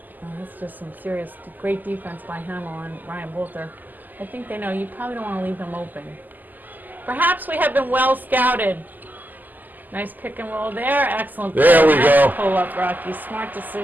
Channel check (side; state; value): left; late; 0.085 ms